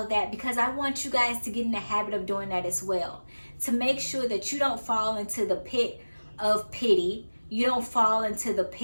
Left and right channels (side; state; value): both; inverted; correlation -1.00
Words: of that because I want you guys to get in the habit of doing that as well, to make sure that you don't fall into the pit of pity, you don't fall into the